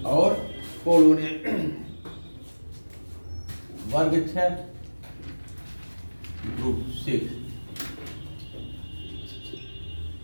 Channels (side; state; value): both; inverted; correlation -1.00